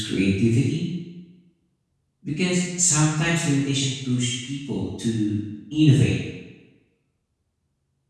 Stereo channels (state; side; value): identical; both; correlation 1.00